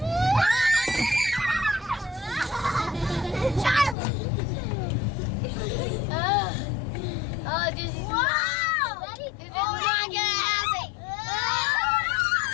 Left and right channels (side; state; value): right; drops out; at 4.0 s